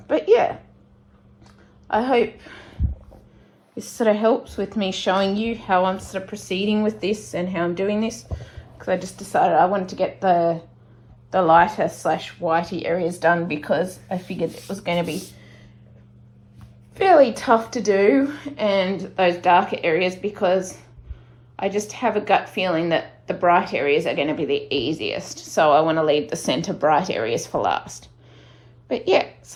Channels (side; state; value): both; identical; correlation 1.00